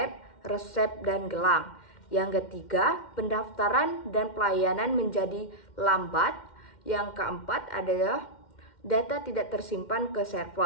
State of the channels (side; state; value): right; late; 2.1 ms